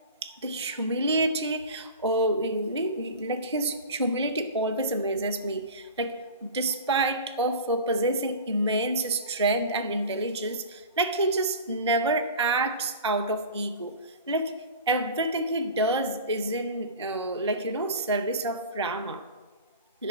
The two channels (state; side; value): inverted; both; correlation -0.34